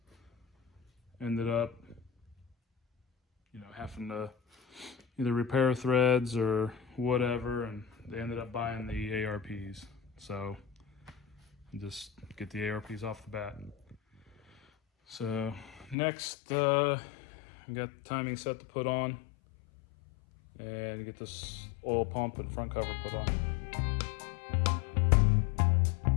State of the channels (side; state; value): right; drops out; at 16.0 s